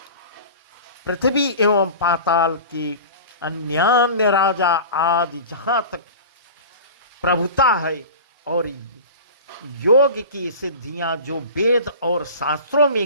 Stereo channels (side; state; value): both; inverted; correlation -0.36